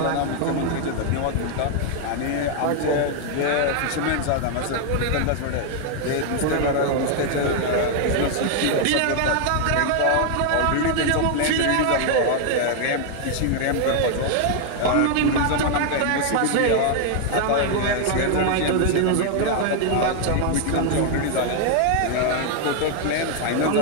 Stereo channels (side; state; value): both; different; correlation 0.00